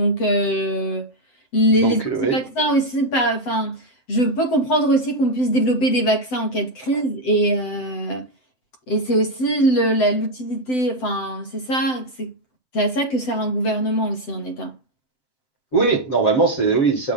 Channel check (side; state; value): right; late; 7.9 ms